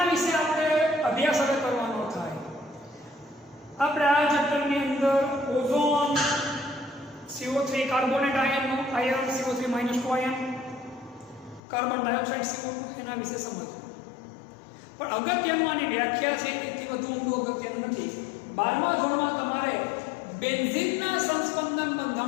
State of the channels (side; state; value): right; drops out; at 11.6 s